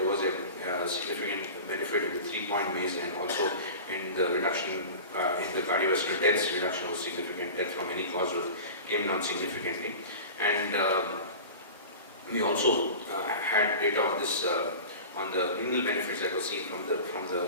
was a significant benefit in the 3-point MACE, and also in the reduction in the cardiovascular deaths. Reduction was significant. Death from any cause came down significantly. And we also had data on this on the renal benefits that were seen from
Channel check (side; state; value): both; inverted; correlation -0.34